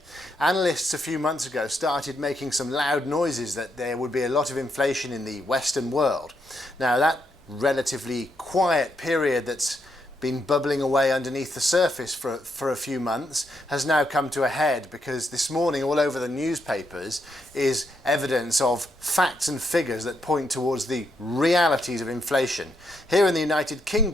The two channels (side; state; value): both; normal; correlation 0.78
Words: Analysts a few months ago started making some loud noises that there would be a lot of inflation in the Western world. Now, that relatively quiet period that's been bubbling away underneath the surface for a few months has now come to a head, because this morning all over the newspapers is evidence of facts and figures that point towards the realities of inflation. Here in the United